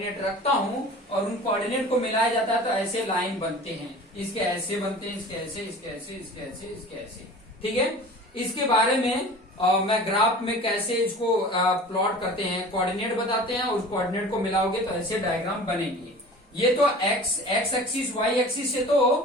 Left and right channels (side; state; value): both; normal; correlation 0.40